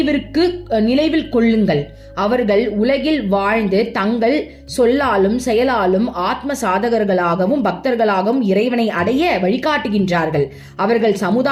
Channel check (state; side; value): identical; both; correlation 1.00